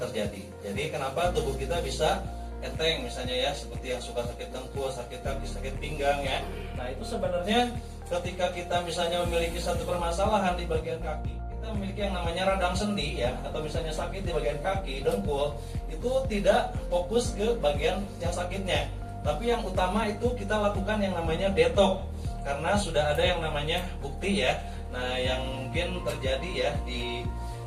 terjadi. Jadi kenapa tubuh kita bisa enteng misalnya ya, seperti yang suka sakit dengkul, sakit kaki, sakit pinggang ya. Nah, itu sebenarnya ketika kita misalnya memiliki satu permasalahan di bagian kaki, kita memiliki yang namanya radang sendi ya, atau misalnya sakit di bagian kaki, dengkul, itu tidak fokus ke bagian yang sakitnya, tapi yang utama itu kita lakukan yang namanya detox, karena sudah ada yang namanya bukti ya. Nah, yang mungkin terjadi ya di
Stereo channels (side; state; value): both; identical; correlation 1.00